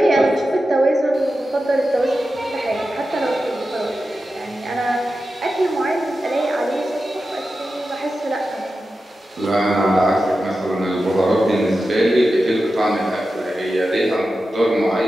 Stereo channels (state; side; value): normal; both; correlation 0.92